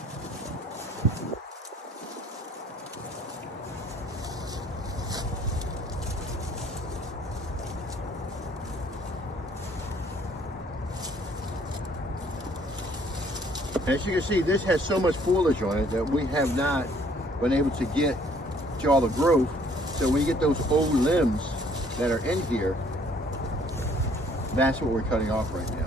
As you can see, this has so much foliage on it that we have not been able to get to all the growth. So when you get those old limbs that are in here, that's what we're cutting off right now.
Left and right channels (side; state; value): both; normal; correlation 0.60